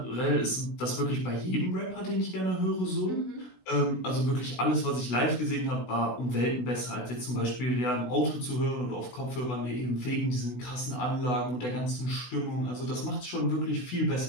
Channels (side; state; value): right; late; 16 ms